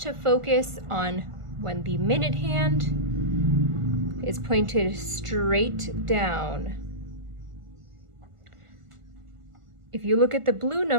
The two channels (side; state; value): left; late; 1.5 ms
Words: focus on when the minute hand is pointed straight down. If you look at the blue